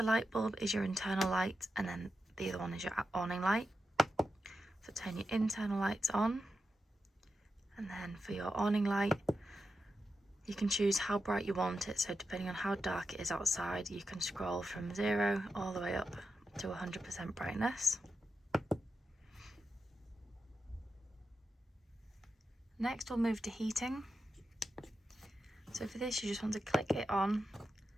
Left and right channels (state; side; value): normal; both; correlation 0.89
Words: light bulb is your internal light, and then the other one is your awning light. So turn your internal lights on. And then for your awning light, you can choose how bright you want it. So depending on how dark it is outside, you can scroll from 0 all the way up to 100% brightness. Next we'll move to heating. So for this you just want to click it on